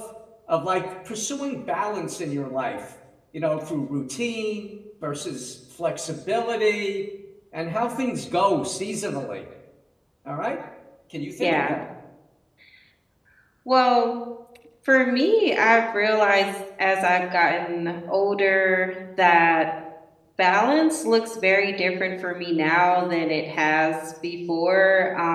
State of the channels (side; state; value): both; identical; correlation 1.00